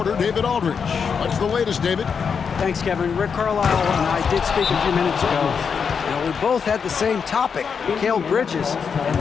David Aldridge. What's the latest, David? Thanks, Kevin. Rick Carlisle and I did speak a few minutes ago. We both had the same topic, Mikal Bridges, and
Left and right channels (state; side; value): quieter; right; 6.3 dB